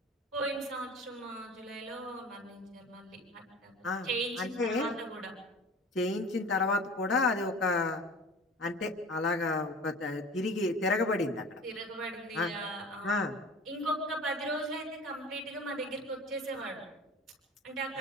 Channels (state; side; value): normal; both; correlation 0.39